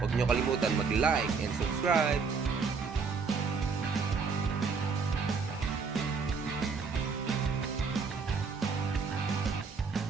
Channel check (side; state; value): left; quieter; 5.2 dB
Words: Huwag nyo kalimutan mag-like and subscribe!